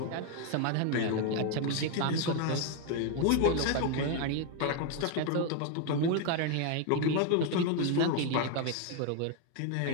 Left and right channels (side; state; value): both; different; correlation 0.01